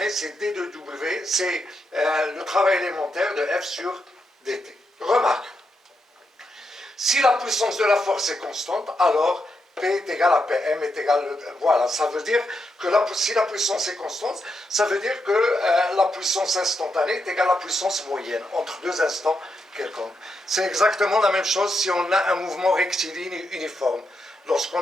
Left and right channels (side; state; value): both; normal; correlation 0.83